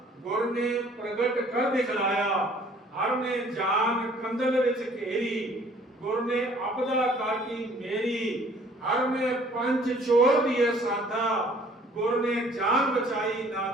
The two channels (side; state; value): both; normal; correlation 0.56